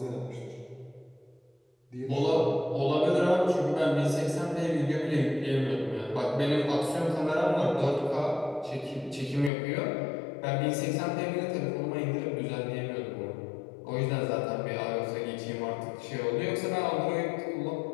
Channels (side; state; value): right; drops out; at 9.5 s